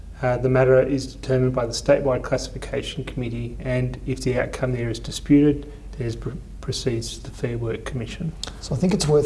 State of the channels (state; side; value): identical; both; correlation 1.00